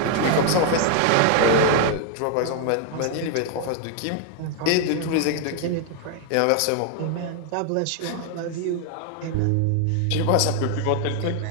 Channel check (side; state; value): both; different; correlation 0.01